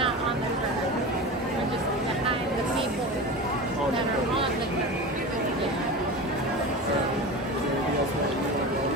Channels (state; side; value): normal; both; correlation 0.28